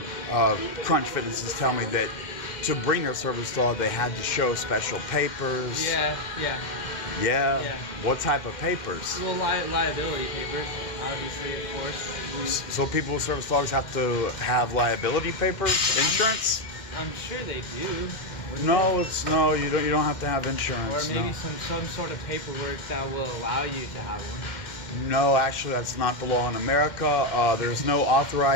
Crunch Fitnesses tell me that to bring their service dog, they had to show special papers. Yeah. Yeah? What type of papers? Well, liability papers, obviously, of course. So people with service dogs have to have liability papers, insurance? I'm sure they do. No, you don't have to have insurance. Or maybe some sort of paperwork that will allow you to have one. No, actually, that's not the law in America. There's no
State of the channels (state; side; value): late; right; 2.1 ms